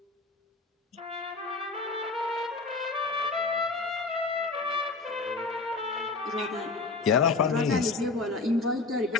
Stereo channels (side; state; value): right; quieter; 3.8 dB